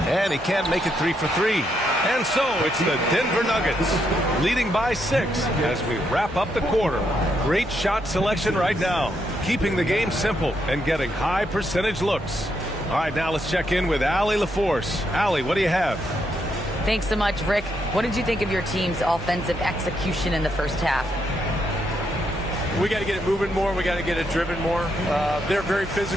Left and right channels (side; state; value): both; normal; correlation 0.78